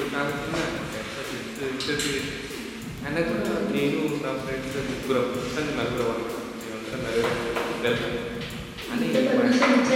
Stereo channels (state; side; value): identical; both; correlation 1.00